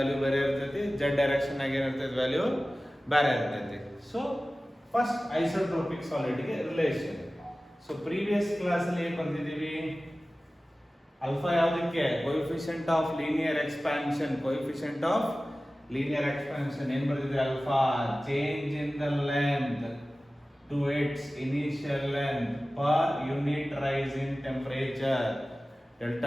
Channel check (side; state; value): both; normal; correlation 0.96